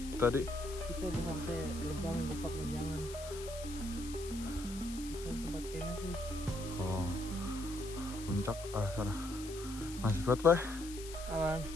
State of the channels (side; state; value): left; noise; hiss, 13 dB below the sound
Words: tadi Kita udah sampai gerbang Gupak Menjangan. Sekarang tempat campnya sih. puncak sana. Masih kuat, Pak? Aman.